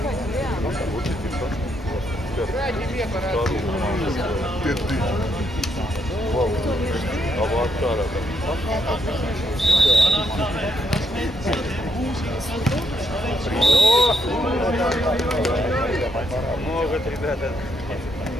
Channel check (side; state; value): both; normal; correlation 0.76